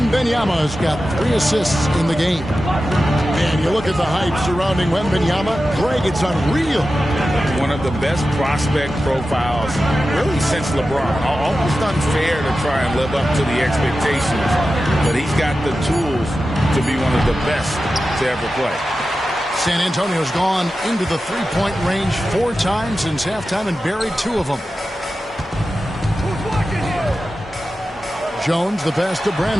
got 3 assists in the game. And you look at the hype surrounding Wembanyama. Greg, it's unreal. One of the best prospect profiles really since LeBron. Almost unfair to try and live up to the expectations. But he's got the tools to be one of the best to ever play. San Antonio's gone into the three-point range 4 times since halftime and buried 2 of them. Jones, the pass to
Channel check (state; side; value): normal; both; correlation 0.93